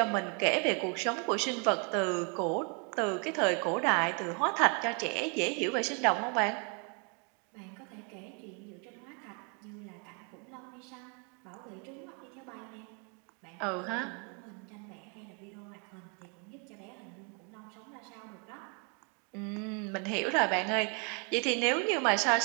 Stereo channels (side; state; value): left; quieter; 36.3 dB